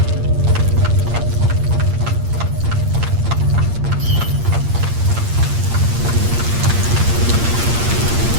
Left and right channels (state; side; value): late; left; 8.6 ms